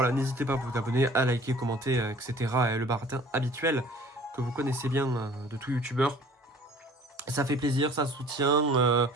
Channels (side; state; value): both; normal; correlation 0.50